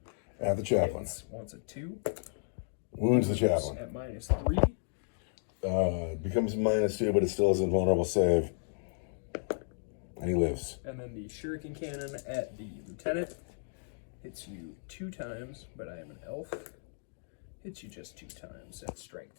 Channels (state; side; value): silent; right; digital silence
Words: At the chaplain. Wants a 2. Wounds the chaplain. At minus 3. Becomes minus 2, but it still is a vulnerable save. And he lives. And then the shuriken cannon at the lieutenant hits you 2 times, but I am an elf. Hits you just 2 times at